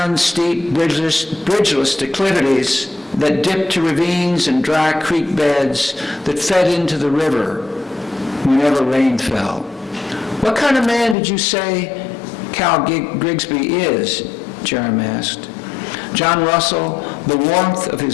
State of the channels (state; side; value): drops out; right; at 11.2 s